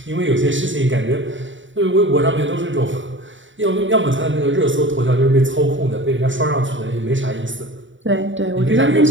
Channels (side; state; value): left; late; 0.55 ms